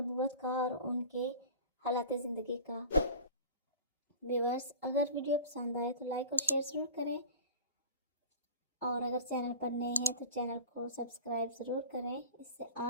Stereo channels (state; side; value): inverted; both; correlation -0.37